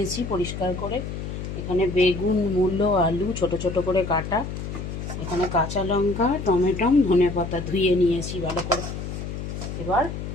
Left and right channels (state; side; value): noise; left; hum, 7 dB below the sound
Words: পরিষ্কার করে। এখানে বেগুন, মূলো, আলু ছোট ছোট করে কাটা। এখানে কাঁচা লঙ্কা, টমেটো, ধনেপাতা ধুয়ে নিয়েছি ভালো করে। এবার